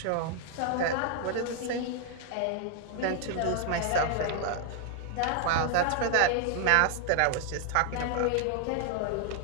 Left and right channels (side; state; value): both; different; correlation 0.00